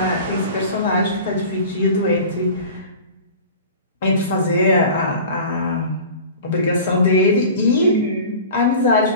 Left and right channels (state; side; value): inverted; both; correlation -0.39